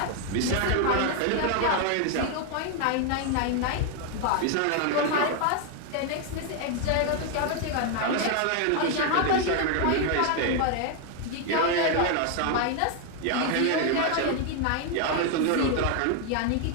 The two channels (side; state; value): both; different; correlation 0.01